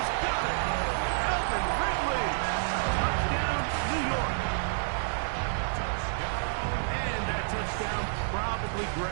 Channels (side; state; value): left; silent; digital silence